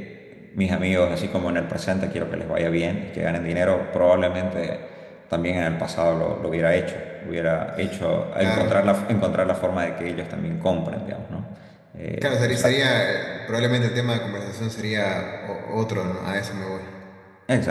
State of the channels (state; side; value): identical; both; correlation 1.00